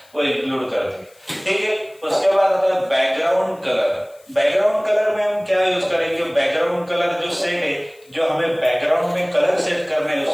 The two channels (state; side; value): noise; left; hiss, 30 dB below the sound